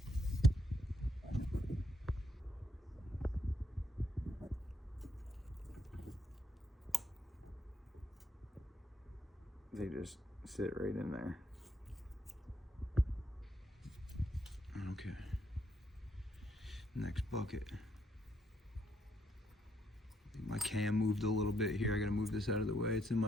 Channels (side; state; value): both; normal; correlation 0.74